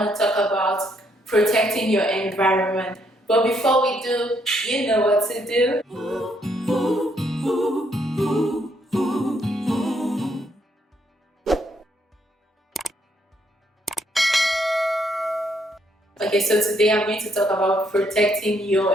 to talk about protecting your environment. But before we do, you know what to do. Okay, so today I'm going to talk about protecting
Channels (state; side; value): normal; both; correlation 0.72